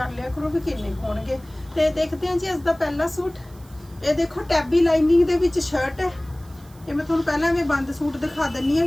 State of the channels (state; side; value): noise; right; hiss, 27 dB below the sound